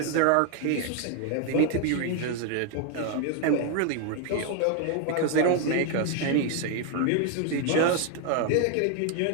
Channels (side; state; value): both; different; correlation 0.01